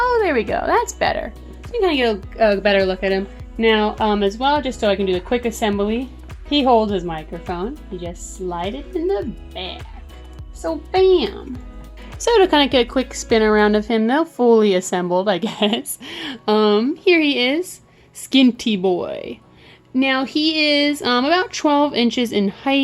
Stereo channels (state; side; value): identical; both; correlation 1.00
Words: there we go. That's better. So you can kind of get a better look at him. Now, as well, just so I can do the quick assembly, he holds his microphone. You just slide it in the back. So, bam. So to kind of get a quick spin around of him, though, fully assembled, I guess. Here he is, Skinty Boy. Now he is about 12 inches in